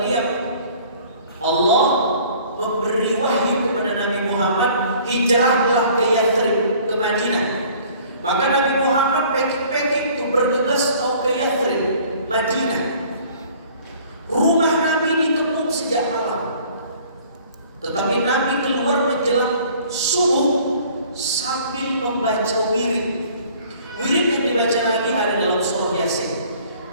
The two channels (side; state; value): both; inverted; correlation -0.53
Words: diam. Allah memberi wahyu kepada Nabi Muhammad, hijrahlah ke Yathrib, ke Madinah. Maka Nabi Muhammad packing-packing untuk bergegas mau ke Yathrib, Madinah. Rumah Nabi dikepung sejak malam. Tetapi Nabi keluar menjelang subuh sambil membaca wirid. Wirid yang dibaca Nabi ada dalam surah Yasin.